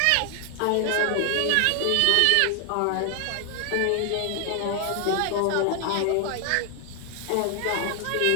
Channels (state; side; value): different; both; correlation 0.00